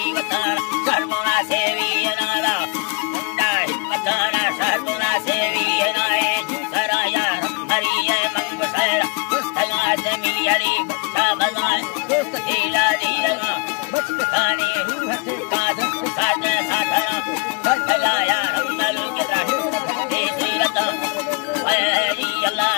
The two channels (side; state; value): right; quieter; 33.4 dB